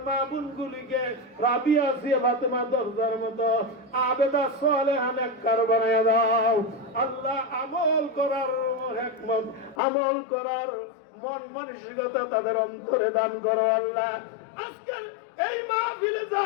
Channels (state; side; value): drops out; right; at 9.8 s